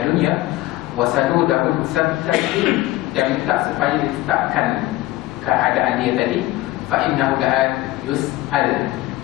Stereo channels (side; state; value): right; quieter; 17.3 dB